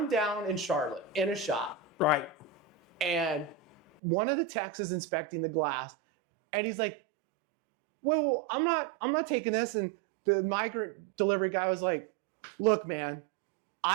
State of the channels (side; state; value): left; drops out; at 4.0 s